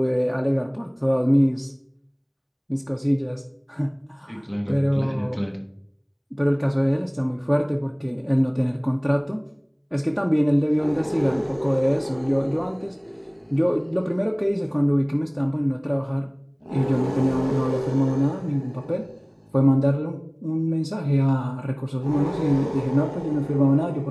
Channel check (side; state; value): both; identical; correlation 1.00